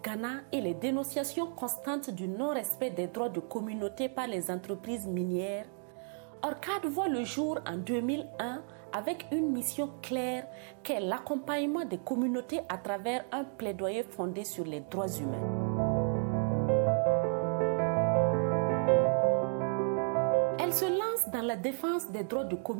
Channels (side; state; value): left; silent; 56 dB below the other